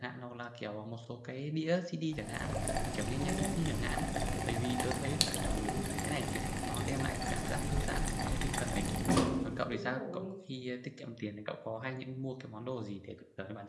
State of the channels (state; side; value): identical; both; correlation 1.00